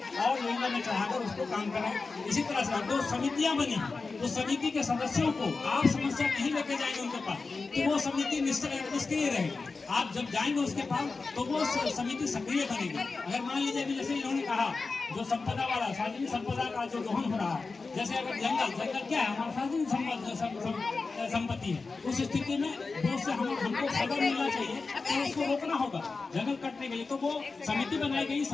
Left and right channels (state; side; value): quieter; right; 4.1 dB